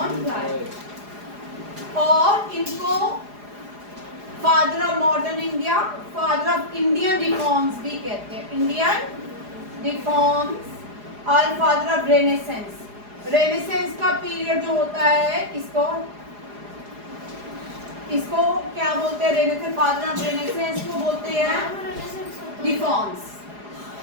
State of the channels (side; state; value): left; late; 4.8 ms